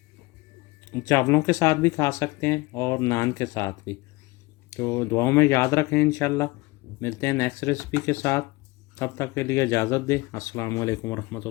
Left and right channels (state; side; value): quieter; right; 22.5 dB